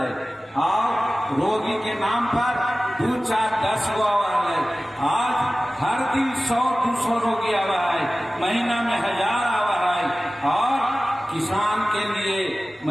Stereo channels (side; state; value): both; normal; correlation 0.97